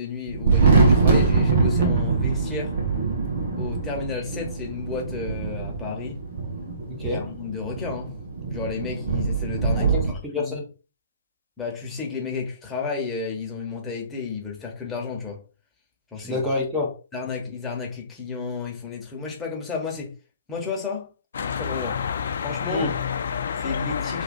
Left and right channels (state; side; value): inverted; both; correlation -0.53